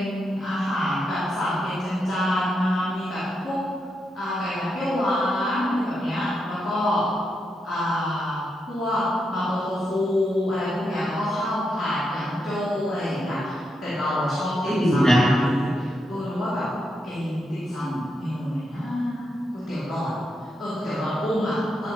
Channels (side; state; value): both; normal; correlation 0.83